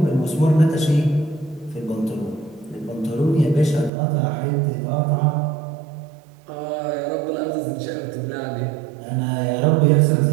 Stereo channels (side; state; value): left; drops out; at 3.9 s